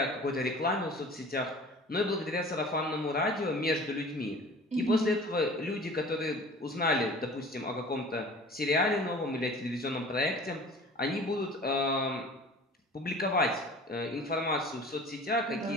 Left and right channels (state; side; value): normal; both; correlation 0.44